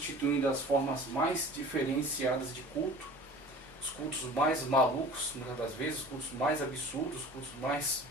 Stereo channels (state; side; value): normal; both; correlation 0.42